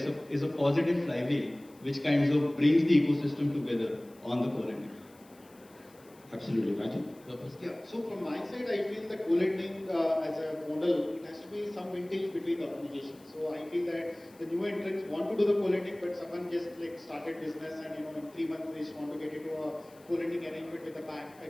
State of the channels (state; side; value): noise; left; hiss, 27 dB below the sound